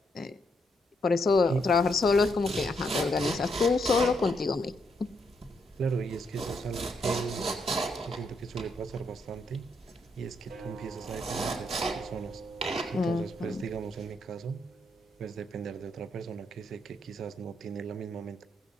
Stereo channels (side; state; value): both; normal; correlation 0.77